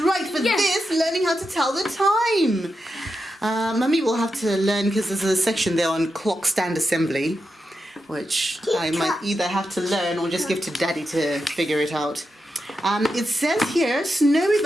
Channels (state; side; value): normal; both; correlation 0.88